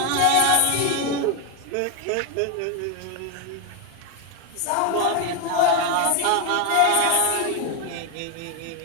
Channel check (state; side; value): different; both; correlation 0.01